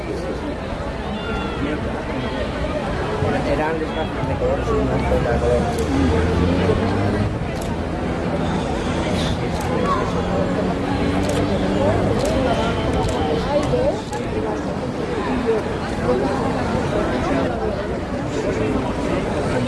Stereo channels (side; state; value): both; identical; correlation 1.00